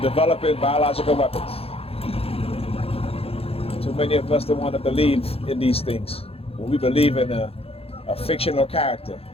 developing biological weapons. Too many of us don't want to believe in these things. When we believe in a fictional character,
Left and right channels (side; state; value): right; late; 0.28 ms